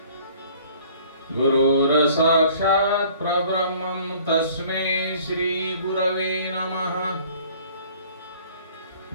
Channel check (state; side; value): inverted; both; correlation -0.53